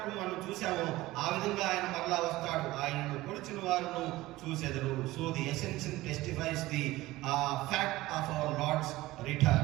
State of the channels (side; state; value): left; quieter; 18.0 dB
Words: మనం చూసామో ఆ విధంగా ఆయన మరలా వస్తాడు. ఆయనను పొడిచిన వారును చూసెదరు. So the essential testifies the fact of our Lord's